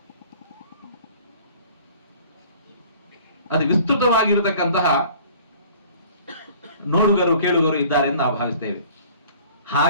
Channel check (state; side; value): inverted; both; correlation -0.50